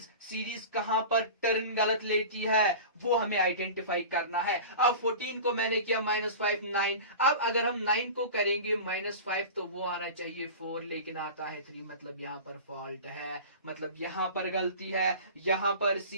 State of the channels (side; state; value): both; inverted; correlation -0.34